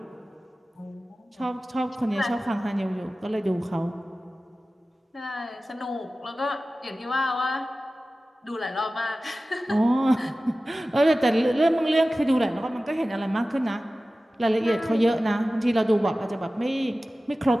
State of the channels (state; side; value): normal; both; correlation 0.96